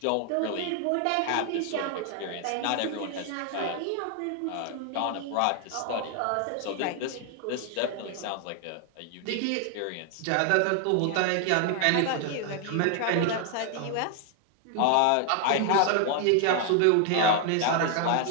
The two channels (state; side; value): different; both; correlation 0.00